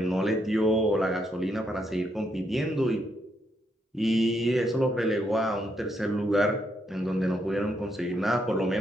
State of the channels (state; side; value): normal; both; correlation 0.77